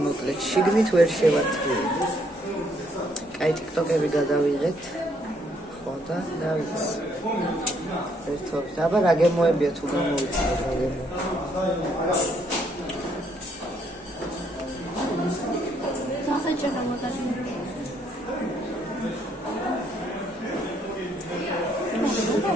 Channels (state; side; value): normal; both; correlation 0.70